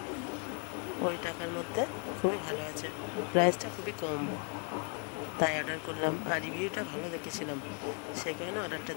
ওই টাকার মধ্যে খুবই ভালো আছে। প্রাইসটা খুবই কম, তাই অর্ডার করলাম। আর রিভিউটা ভালো দেখেছিলাম, সেই কারণে অর্ডারটা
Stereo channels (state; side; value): quieter; right; 38.8 dB